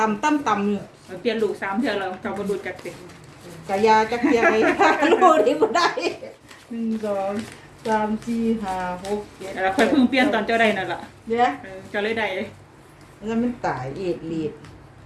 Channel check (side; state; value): both; identical; correlation 1.00